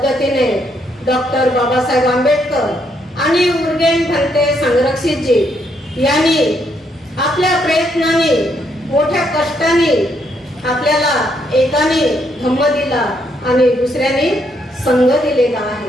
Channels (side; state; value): both; normal; correlation 0.74